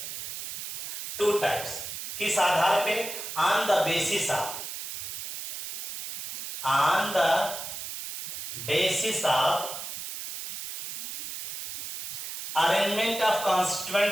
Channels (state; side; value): noise; right; hiss, 7 dB below the sound